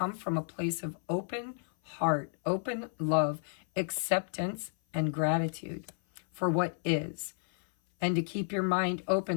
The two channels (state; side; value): silent; right; 57 dB below the other